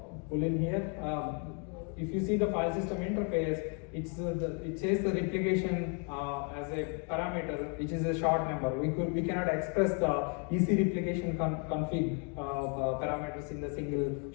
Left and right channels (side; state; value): right; quieter; 40.0 dB